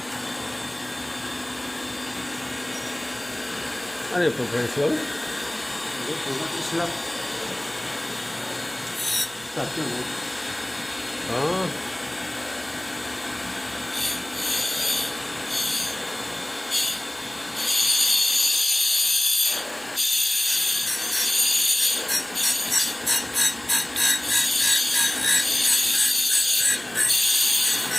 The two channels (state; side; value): noise; right; hum, 28 dB below the sound